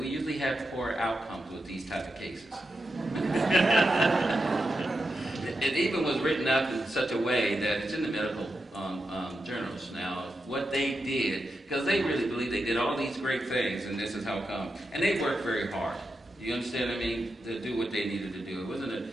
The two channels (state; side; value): normal; both; correlation 0.88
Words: usually have poor outcomes with these type of cases. It even was written up in such a way that it's in the medical journals now, what they did, because they really believe they did all these great things, and this is how come. And they worked very hard. You understand what I mean? To do what they needed to do. It